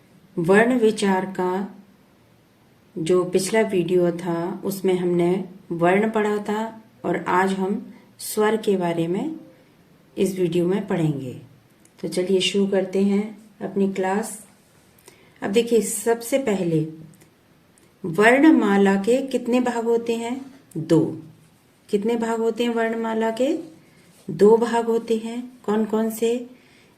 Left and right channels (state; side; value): identical; both; correlation 1.00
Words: वर्ण विचार का जो पिछला वीडियो था उसमें हमने वर्ण पढ़ा था और आज हम स्वर के बारे में इस वीडियो में पढ़ेंगे। तो चलिए शुरू करते हैं अपनी क्लास। अब देखिए, सबसे पहले वर्णमाला के कितने भाग होते हैं? 2। कितने भाग होते हैं वर्णमाला के? 2 भाग होते हैं। कौन कौन से?